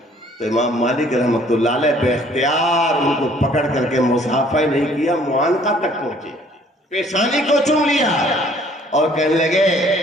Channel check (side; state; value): both; normal; correlation 0.58